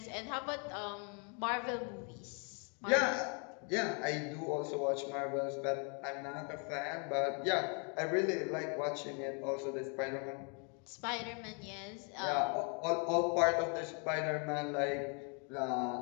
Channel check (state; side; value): quieter; right; 37.4 dB